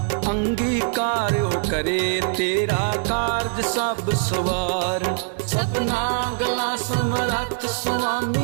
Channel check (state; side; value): silent; left; digital silence